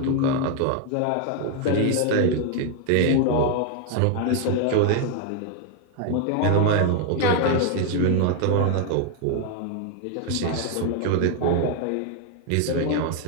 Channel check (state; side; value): different; both; correlation 0.00